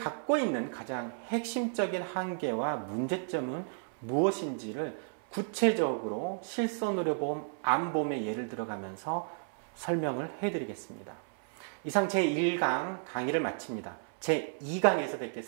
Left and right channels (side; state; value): left; silent; 55 dB below the other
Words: 있는 가장 핵심적인 한계와 문제점은 무엇인지를 구체적으로 실손의료보험, 암보험의 예를 들어가면서 설명을 해드리겠습니다. 이상 제1강 강의를 마칩니다. 제2강에서